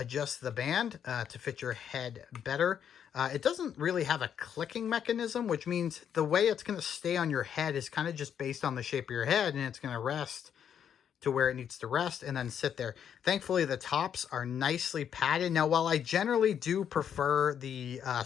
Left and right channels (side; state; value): right; quieter; 8.6 dB